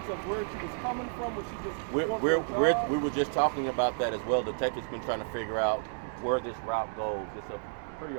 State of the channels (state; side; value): silent; left; digital silence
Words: of where she was coming from. Was she just we were just talking about that as well. The detective's been trying to figure out where this route goes. It's a pretty